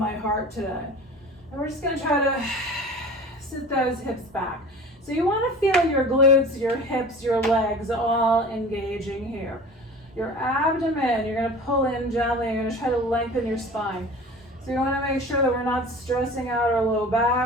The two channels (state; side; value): normal; both; correlation 0.40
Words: heart today. And we're just going to try to sit those hips back. So you want to feel your glutes, your hips, your legs all engaging here. Your abdomen, you're going to pull in gently. You're going to try to lengthen your spine. So you want to make sure that we're not stressing out our low